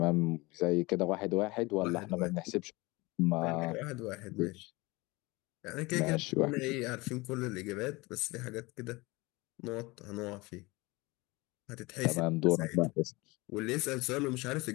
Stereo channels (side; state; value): right; quieter; 23.4 dB